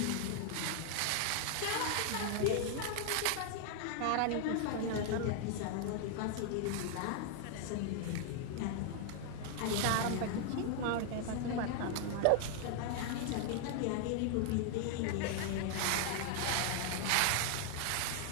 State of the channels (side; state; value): both; different; correlation 0.00